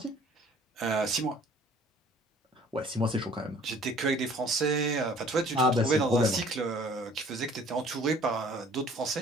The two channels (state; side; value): normal; both; correlation 0.54